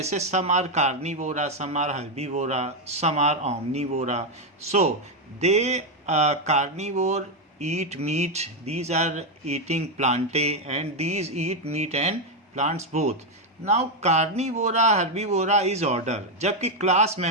some are carnivora, some are herbivora, some are omnivora. So they carnivore eat meat. These are eating plantae, and these eat meat and plants both. Now carnivora, herbivora is order, जबकि class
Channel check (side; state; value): both; normal; correlation 0.04